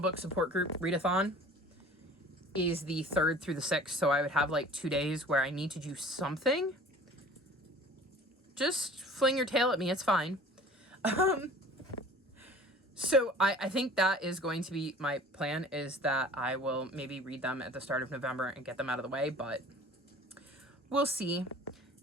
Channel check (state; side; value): normal; both; correlation 0.45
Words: support group readathon is the 3rd through the 6th, so I would have like 2 days where I need to do something. Just fling your tail at me, it's fine. So I think that is going to be my plan, is that I will maybe read them at the start of November and get them out of the way, but we'll see.